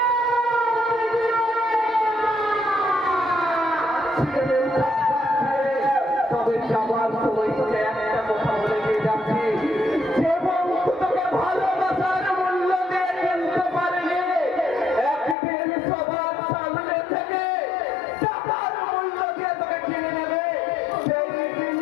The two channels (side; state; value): right; drops out; at 15.4 s